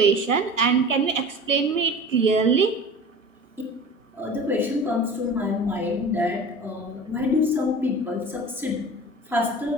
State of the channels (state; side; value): normal; both; correlation 0.38